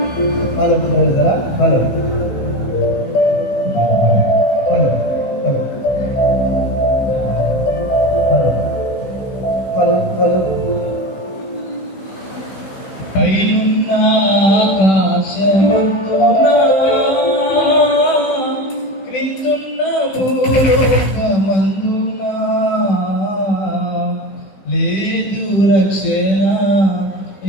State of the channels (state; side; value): late; right; 16 ms